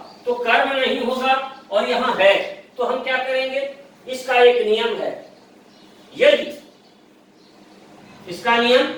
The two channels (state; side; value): identical; both; correlation 1.00